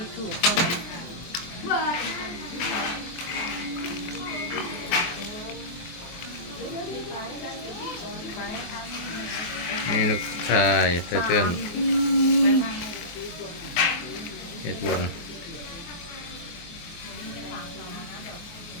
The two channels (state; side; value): late; right; 24 ms